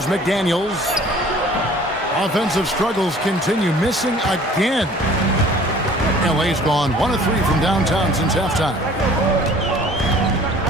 McDaniels. Offensive struggles continue, missing again. LA's gone 1 of 3 from downtown since halftime.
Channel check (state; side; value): normal; both; correlation 0.51